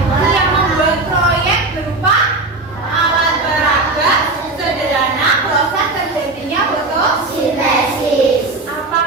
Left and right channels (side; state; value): left; quieter; 3.2 dB